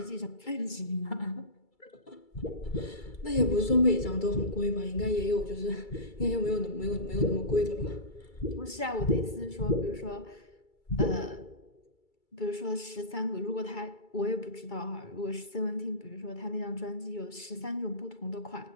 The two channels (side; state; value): right; late; 2.3 ms